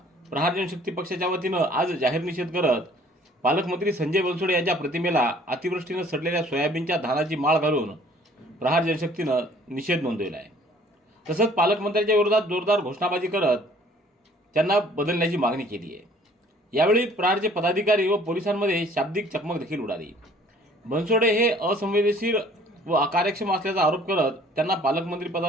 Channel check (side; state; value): both; normal; correlation 0.55